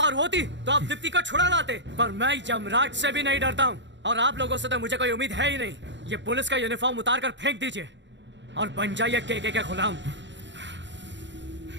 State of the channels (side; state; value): left; late; 0.53 ms